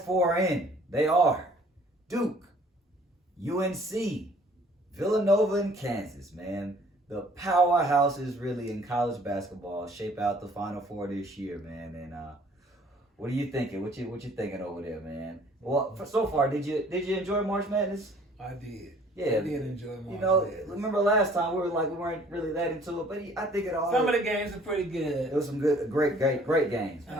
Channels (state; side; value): normal; both; correlation 0.55